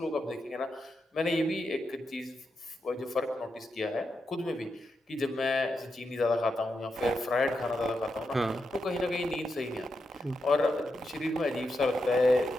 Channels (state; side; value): normal; both; correlation 0.85